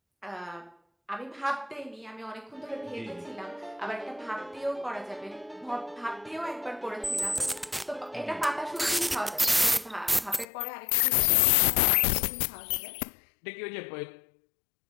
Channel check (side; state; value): right; drops out; at 10.5 s